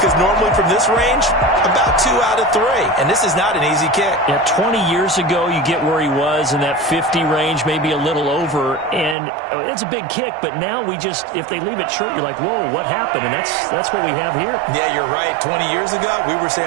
normally from this range, about 2 out of 3. And this is not an easy kick. Yeah, 20 years ago, you get where he was in that 50 range, maybe a little over. And it's a big kick, but now we just, if they leave it short, you're like, whoa, what happened? And that's what we have here. Yeah, you're right. 20 years ago, we were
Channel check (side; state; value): left; drops out; at 9.2 s